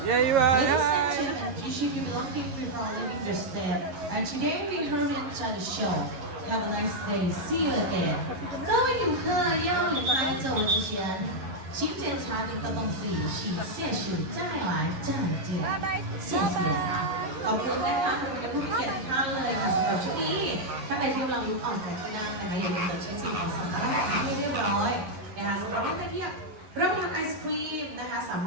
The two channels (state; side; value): late; left; 11 ms